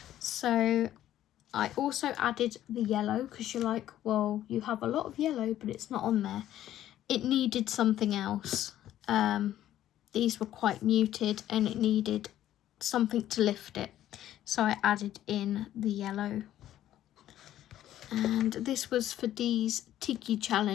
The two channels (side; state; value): right; quieter; 12.5 dB